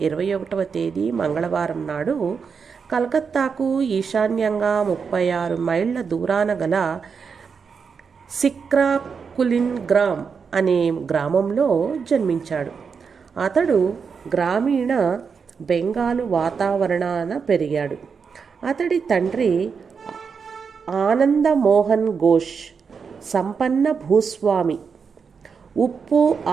21వ తేదీ మంగళవారం నాడు కలకత్తాకు ఈశాన్యంగా 36 మైళ్ళ దూరాన గల సిక్రాకులిన్ గ్రామ్ అనే గ్రామంలో జన్మించాడు. అతడు గ్రామీణ బెంగాలు వాతావరణాన పెరిగాడు. అతడి తండ్రి ఆనందమోహన్ ఘోష్ సంపన్న భూస్వామి. ఉప్పు,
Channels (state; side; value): quieter; left; 5.9 dB